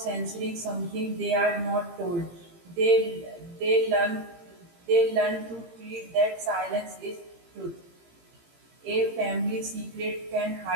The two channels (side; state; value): left; late; 17 ms